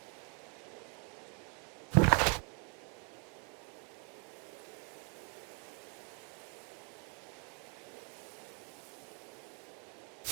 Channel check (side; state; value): left; quieter; 36.4 dB